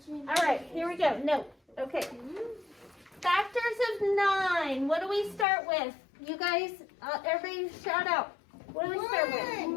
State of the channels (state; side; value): drops out; right; at 5.5 s